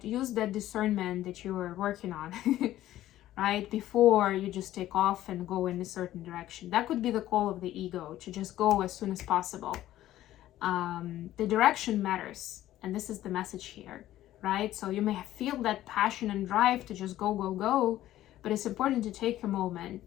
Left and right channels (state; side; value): quieter; right; 13.9 dB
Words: Use that discernment that you are working on, right? Before you just take off and go in a certain direction. That could be the call of the ego, to just go as soon as possible. The direction matters, and this is the message here, right? So you may feel that passion and drive to just go, but it's important to take a